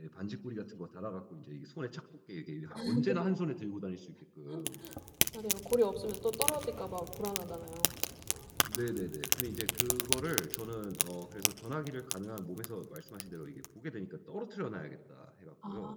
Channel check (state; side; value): identical; both; correlation 1.00